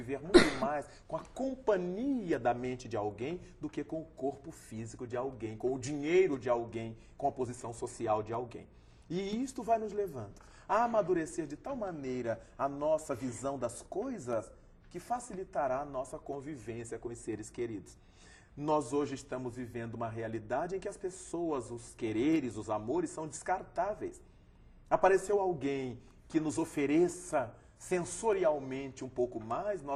muito mais com a companhia da mente de alguém do que com o corpo físico de alguém, com o dinheiro de alguém, com a posição social de alguém. E isto vai nos levando a amadurecer de tal maneira a nossa visão das coisas que facilitará a nossa convivência com os seres queridos. Nós hoje estamos vivendo uma realidade em que as pessoas, os quereres, os amores são descartáveis. Apareceu alguém que nos ofereça sensorialmente um pouco mais,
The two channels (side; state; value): both; identical; correlation 1.00